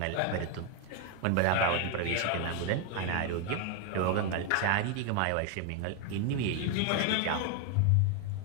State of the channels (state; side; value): different; both; correlation 0.00